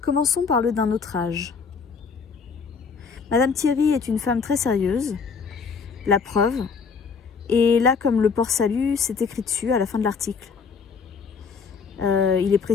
Commençons par le d'un autre âge. Madame Thierry est une femme très sérieuse, la preuve, et là, comme le port-salut, c'est écrit dessus à la fin de l'article. Il est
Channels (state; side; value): quieter; right; 5.5 dB